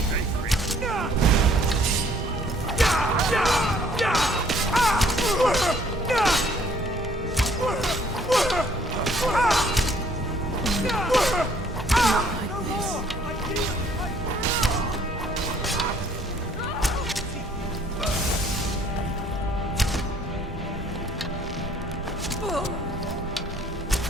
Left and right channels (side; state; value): both; normal; correlation 0.61